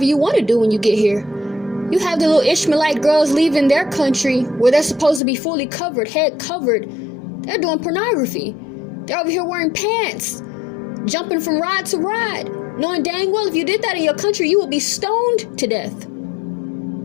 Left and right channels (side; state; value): right; drops out; at 5.2 s